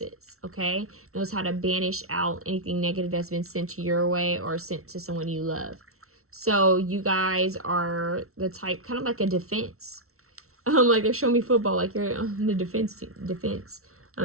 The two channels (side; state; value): left; late; 0.63 ms